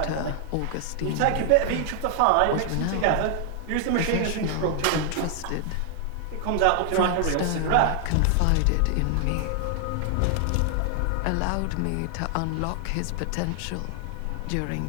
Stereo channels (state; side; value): different; both; correlation 0.00